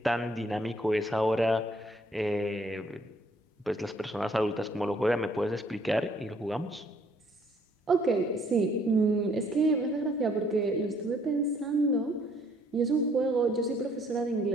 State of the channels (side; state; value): both; normal; correlation 0.64